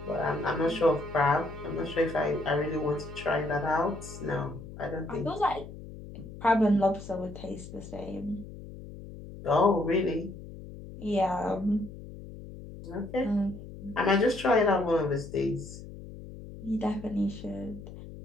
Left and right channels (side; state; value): left; noise; hum, 13 dB below the sound